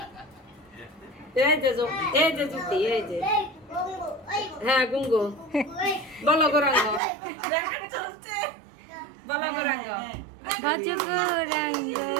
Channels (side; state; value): left; drops out; at 7.0 s